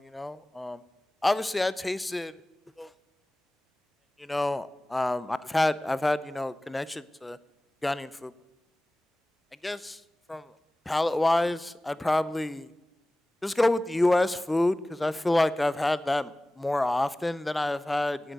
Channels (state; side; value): normal; both; correlation 0.98